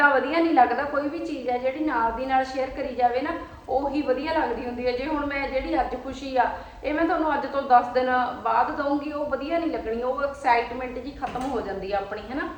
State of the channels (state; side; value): identical; both; correlation 1.00